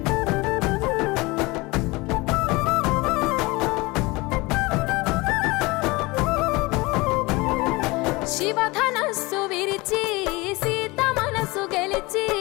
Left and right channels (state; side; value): quieter; right; 23.4 dB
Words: శివధనస్సు విరిచి సీత మనసు గెలిచి